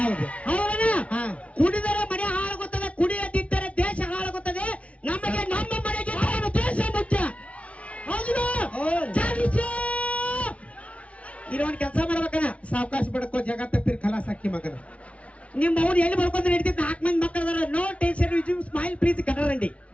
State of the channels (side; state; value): right; late; 0.064 ms